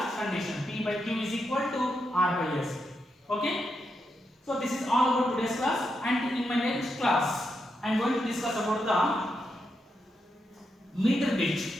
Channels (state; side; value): normal; both; correlation 0.84